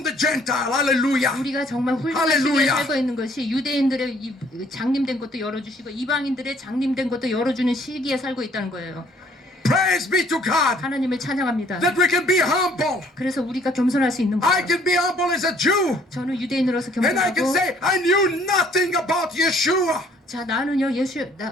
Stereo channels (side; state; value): both; normal; correlation 0.60